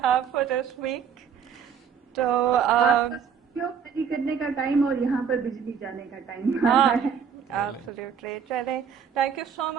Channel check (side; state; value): left; quieter; 7.2 dB